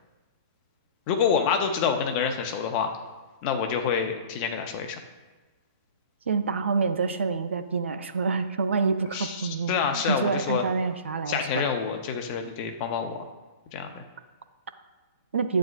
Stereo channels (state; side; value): inverted; both; correlation -0.38